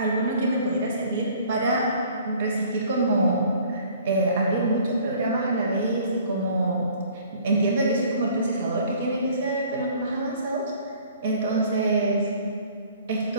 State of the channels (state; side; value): inverted; both; correlation -0.54